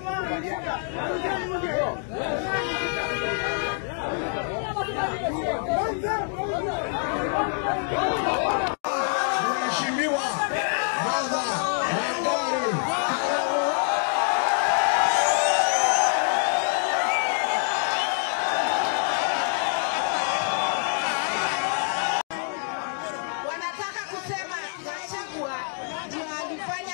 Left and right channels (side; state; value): right; silent; 56 dB below the other